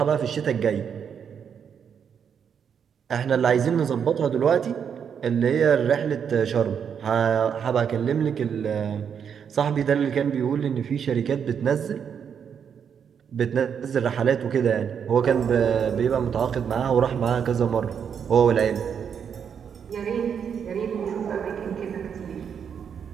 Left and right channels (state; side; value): quieter; left; 7.5 dB